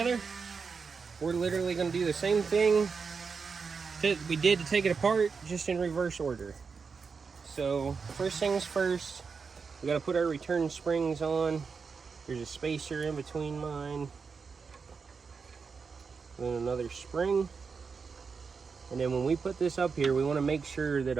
we're literally going to do the same thing that we did to take it apart, just in reverse order. So first things first, we got to put our return springs on. There's a spacer in between mine, then another spring. And then when we put this up here, we want to make sure that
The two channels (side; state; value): left; quieter; 5.3 dB